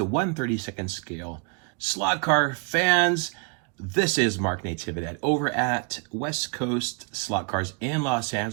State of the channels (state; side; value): quieter; left; 36.9 dB